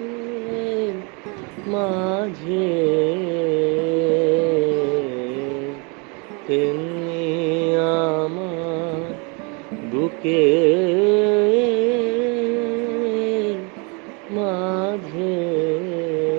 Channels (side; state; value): left; quieter; 32.2 dB